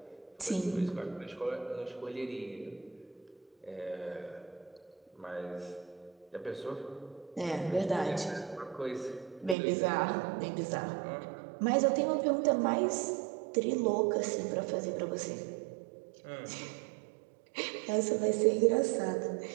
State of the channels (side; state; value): left; drops out; at 9.6 s